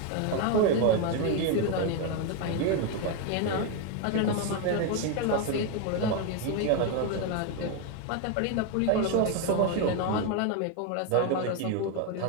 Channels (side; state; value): both; different; correlation 0.02